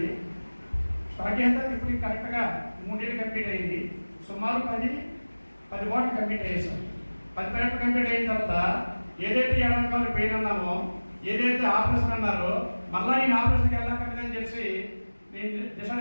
స్టార్ట్ చేసిన తర్వాత ఇప్పుడు కరెక్ట్గా 3 years కంప్లీట్ అయింది. సుమారు 10 వాటికి కంప్లీట్ అయ్యేసాం. 10 వాటికి కంప్లీట్ అయిన తర్వాత ఏదైతే ఎడమకాలు పెయిన్ అన్నామో, ఏదైతే ఆపరేషన్ అన్నారో మళ్ళా నేను ఆపరేషన్కి వెళ్ళక్కర్లేదని చెప్పి నేను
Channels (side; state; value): both; inverted; correlation -1.00